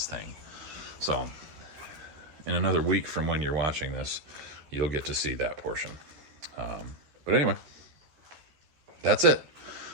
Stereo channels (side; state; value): left; late; 13 ms